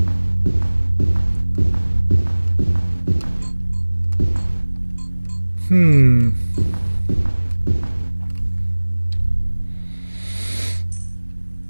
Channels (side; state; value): both; inverted; correlation -1.00